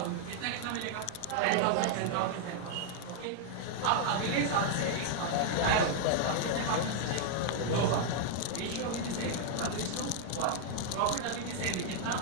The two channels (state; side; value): different; both; correlation -0.01